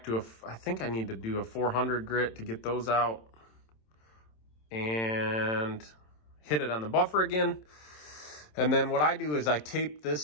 to I think I need to do a 400 grit to get those out, and hit it on the buffer again. And then what I do is I tape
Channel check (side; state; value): right; late; 27 ms